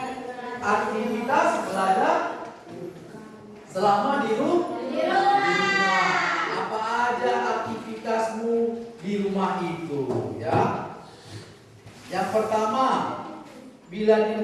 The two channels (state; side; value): identical; both; correlation 1.00